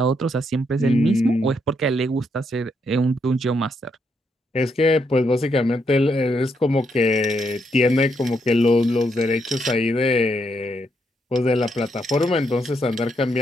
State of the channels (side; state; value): both; normal; correlation 0.77